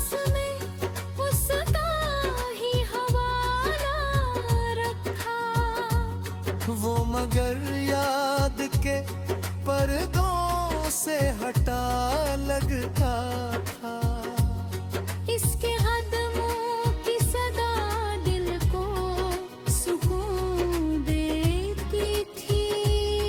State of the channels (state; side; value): identical; both; correlation 1.00